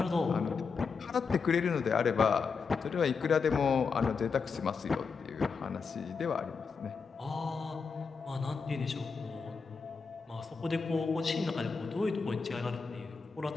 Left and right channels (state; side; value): quieter; right; 5.2 dB